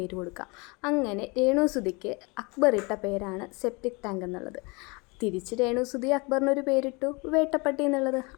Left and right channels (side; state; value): right; quieter; 28.3 dB